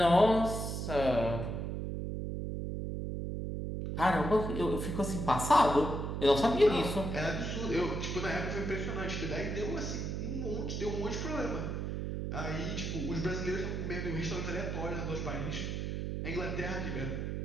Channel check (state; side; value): noise; right; hum, 3 dB below the sound